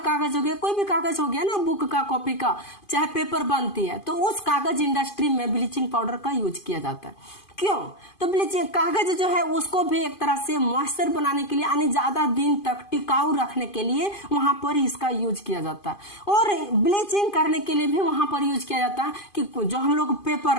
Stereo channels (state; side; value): late; right; 2.5 ms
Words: हो गया, कोई भी कागज हो गया ना, बुक का, कॉपी का, चाहे पेपर बनती है, तो उस कागज इंडस्ट्री में ब्लीचिंग पाउडर का यूज किया जाता है। क्यों? तो ब्लीचिंग कागज जो है उसको भी एक तरह से मॉइस्चर बनाने के लिए यानी ज्यादा दिन तक टिकाऊ रखने के लिए वहां पर इसका यूज किया जाता है। और ब्लीचिंग करने के लिए भी वहां पर यूज किया जाता है कि जो हम लोग पेपर